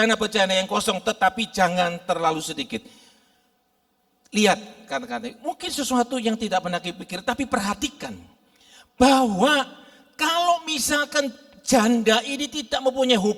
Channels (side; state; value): both; identical; correlation 1.00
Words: yang kosong, tetapi jangan terlalu sedikit. Lihat kata-kata, mungkin sesuatu yang tidak pernah dipikir, tapi perhatikan bahwa kalau misalkan janda ini tidak mempunyai